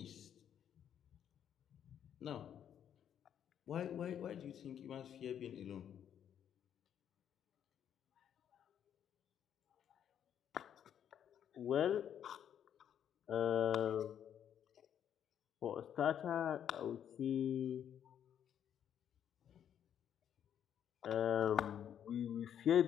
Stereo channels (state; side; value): quieter; right; 9.4 dB